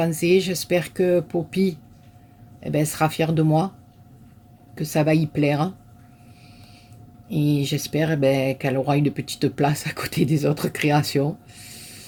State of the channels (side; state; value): both; identical; correlation 1.00